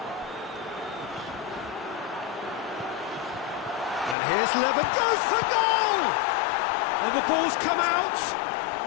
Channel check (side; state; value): right; drops out; at 4.2 s